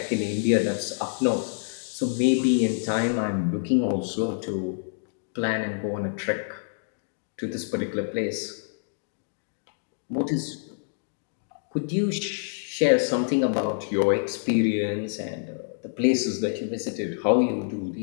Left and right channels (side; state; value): right; silent; digital silence